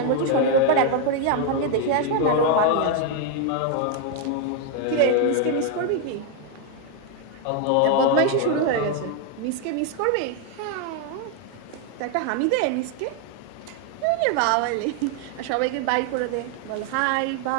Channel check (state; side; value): different; both; correlation 0.01